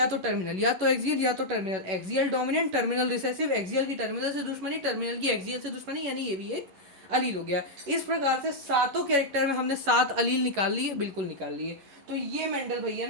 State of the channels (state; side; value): late; left; 11 ms